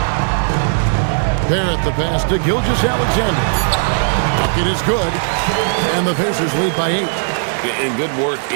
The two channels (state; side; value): silent; left; 57 dB below the other